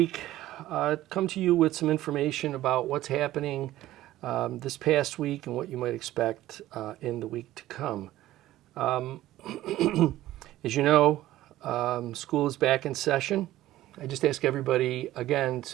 come to you with some information about what's happening this past week and what you might expect in the week to come. As you know, school is back in session. I just ask everybody, again,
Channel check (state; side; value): quieter; left; 15.0 dB